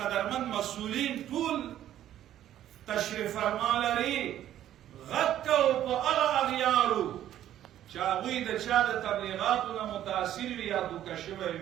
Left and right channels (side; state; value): left; quieter; 11.9 dB